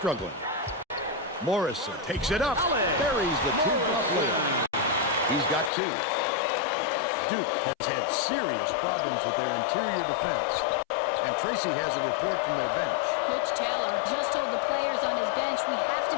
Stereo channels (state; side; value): drops out; right; at 5.7 s